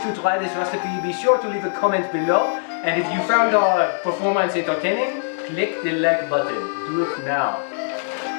try this recipe, be sure to leave a comment below. And if you found our performance entertaining, click the like button. Do it now.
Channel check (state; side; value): silent; right; 64 dB below the other